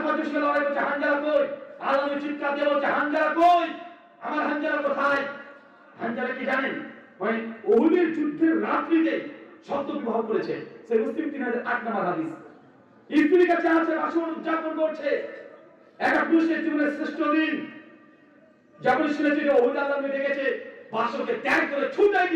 জন লড়াই করছে, হানজালা কই? আল্লাহ নবী চিৎকার দিয়ে বলছে হানজালা কই? আমার হানজালা কোথায়? হানজালা কি জানেন? মানে উহুদের যুদ্ধের রাত্রিতে শব্দ বিবাহ করেছে। সে মুসলিম 3008 নম্বর হাদিস। স্ত্রীর কাছে আছে, বাসন উদযাপন করছে। একটা পুরুষের জীবনের শ্রেষ্ঠ দিন যখন শুনেছে যে উহুদ আল্লাহ নবী দেখেছে, বাসনকে ত্যাগ করে ছুটে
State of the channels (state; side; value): identical; both; correlation 1.00